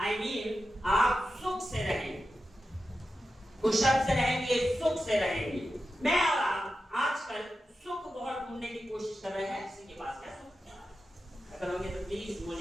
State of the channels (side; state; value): both; normal; correlation 0.91